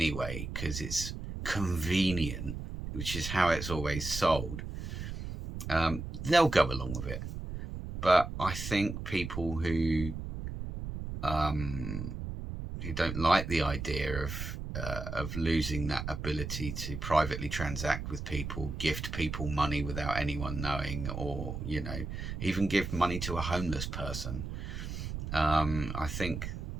because it's convenient, which is how it's always sold. They'll go along with it. But I think people who don't like the idea of losing that ability to privately transact with people, gift people money without anyone knowing, or even give money to a homeless person, I think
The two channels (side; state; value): right; noise; rumble, 6 dB below the sound